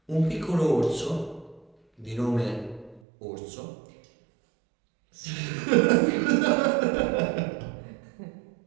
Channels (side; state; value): left; drops out; at 3.0 s